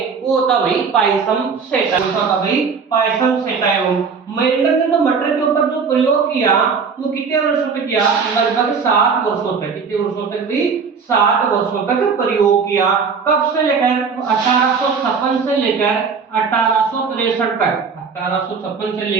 वो होता भाई पाइसम सेटाइवम। होता भाई पाइसम सेटाइवम। मेंडल ने तो मटर के ऊपर जो प्रयोग किया वो कितने वर्षों तक किया? लगभग 7 वर्षों तक। कितने वर्षों तक भी? 7 वर्षों तक प्रयोग किया। कब से लेकर 1856 से लेकर 1863 तक। 1856 से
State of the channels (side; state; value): left; quieter; 5.5 dB